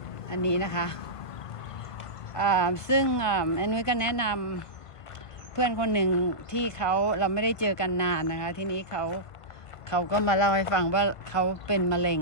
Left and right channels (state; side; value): late; right; 1.5 ms